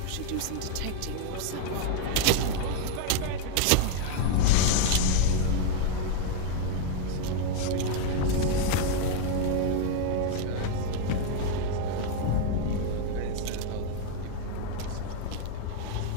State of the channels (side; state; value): both; different; correlation 0.00